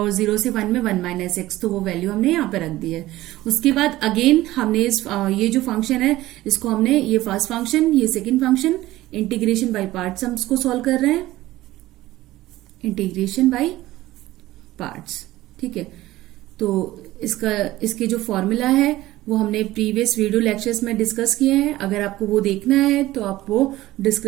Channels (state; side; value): quieter; left; 16.5 dB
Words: 0 से 1 में 1 - x, तो वो वैल्यू हमने यहाँ पे रख दी है। उसके बाद अगेन हमने ये जो फंक्शन है इसको हमने, ये फर्स्ट फंक्शन, ये second function, integration by parts हम इसको सॉल्व कर रहे हैं, इंटीग्रेशन बाय पार्ट्स, ठीक है। तो इसके जो फॉर्मूला है वो हमने प्रीवियस वीडियो लेक्चर्स में डिस्कस किए हैं। अगर आपको वो देखना है तो आप वो